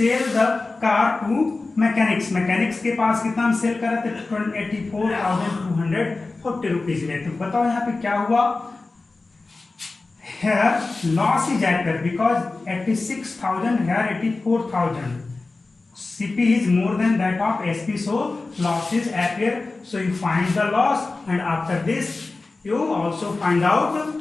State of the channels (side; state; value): right; quieter; 3.5 dB